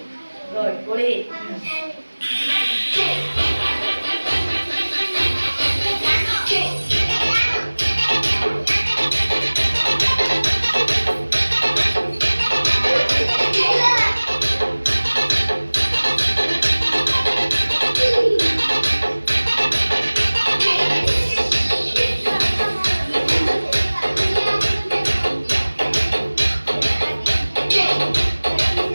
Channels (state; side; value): inverted; both; correlation -1.00